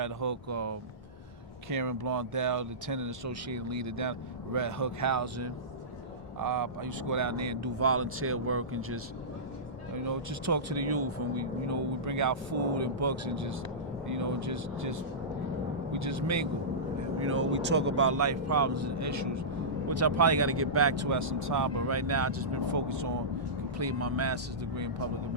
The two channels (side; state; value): both; normal; correlation -0.18